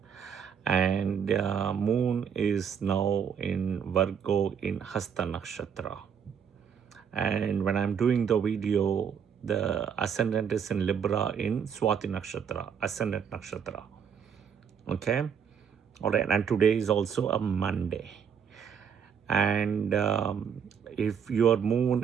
And moon is now in Virgo in Hasta Nakshatra. And when I'm doing the video, the ascendant is in Libra in Swati Nakshatra, ascendant Nakshatra. Okay? All right. And today is also a Monday. And if your moon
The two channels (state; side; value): quieter; left; 7.3 dB